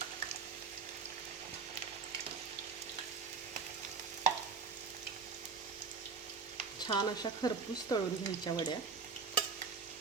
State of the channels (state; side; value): quieter; left; 5.4 dB